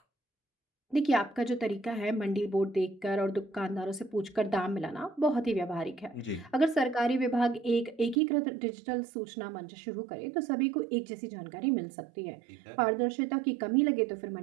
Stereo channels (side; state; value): left; drops out; at 8.2 s